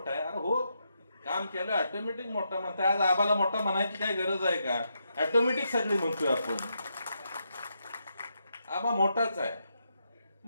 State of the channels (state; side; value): inverted; both; correlation -0.82